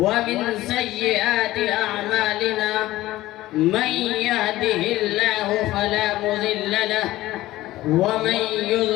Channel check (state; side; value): quieter; right; 16.5 dB